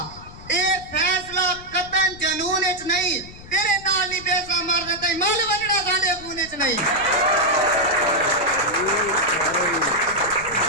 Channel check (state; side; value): noise; left; rumble, 18 dB below the sound